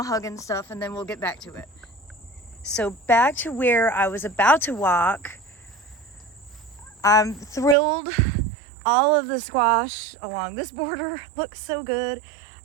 hug and stuff, and then we'll get back to it. So back to where I was about to walk. I'm thrilled. All of the squash along this border looks so good.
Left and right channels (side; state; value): left; drops out; at 7.8 s